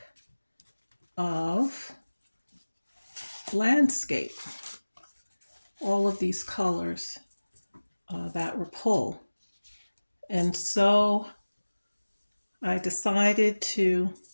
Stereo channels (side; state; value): both; inverted; correlation -1.00